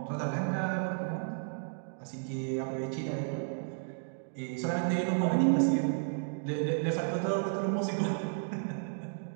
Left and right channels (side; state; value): left; silent; digital silence